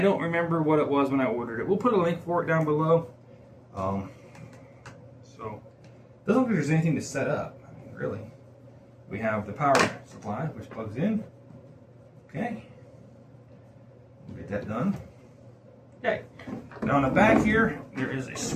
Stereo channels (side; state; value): both; identical; correlation 1.00